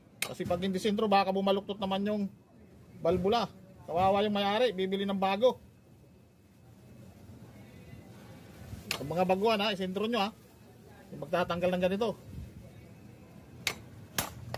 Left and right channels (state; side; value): identical; both; correlation 1.00